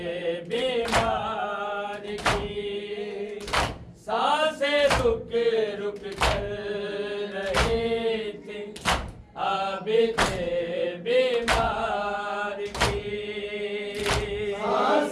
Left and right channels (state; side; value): identical; both; correlation 1.00